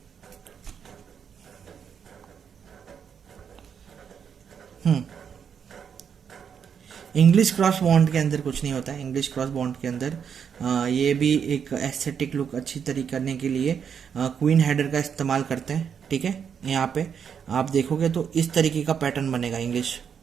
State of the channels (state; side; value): quieter; left; 7.4 dB